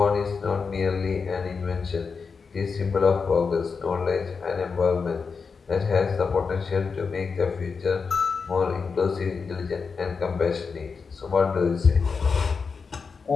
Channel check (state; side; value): quieter; right; 5.2 dB